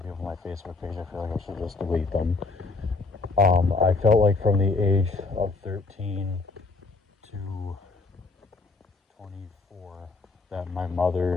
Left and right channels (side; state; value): right; quieter; 3.8 dB